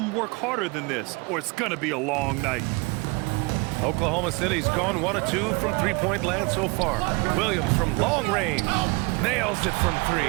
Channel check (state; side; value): quieter; left; 27.8 dB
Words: work harder than this, or it's going to be a long night. Oklahoma City's gone 1 of 2 from three-point land so far. Williams from long range. Nails it from 3.